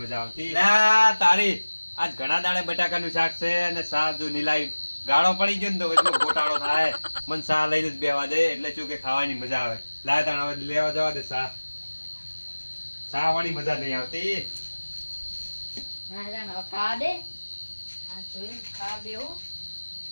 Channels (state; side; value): inverted; both; correlation -1.00